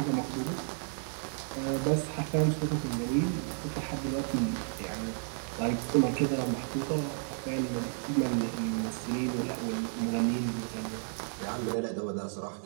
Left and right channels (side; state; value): left; silent; 56 dB below the other